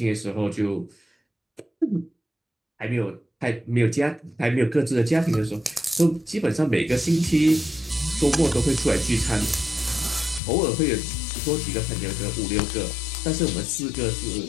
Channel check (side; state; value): right; drops out; at 10.4 s